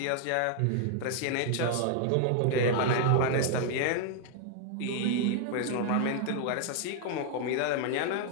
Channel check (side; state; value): both; different; correlation 0.00